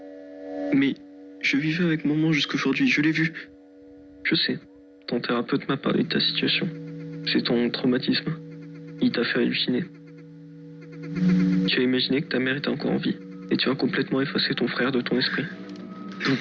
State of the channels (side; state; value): both; identical; correlation 1.00